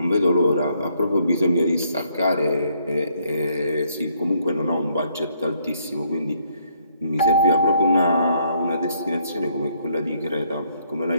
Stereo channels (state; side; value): inverted; both; correlation -0.70